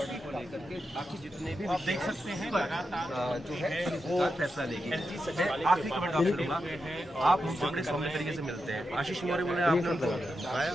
को लेकर के बाकी जितने भी आप देख सकते हैं जो है वो फैसला लेगी। आखिरी कमेंट आपसे लूंगा, आप हमसे बड़े सौम्य तरीके से मिलते हैं। आशीष मौर्य बोले आपने बताया।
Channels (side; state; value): both; normal; correlation 0.88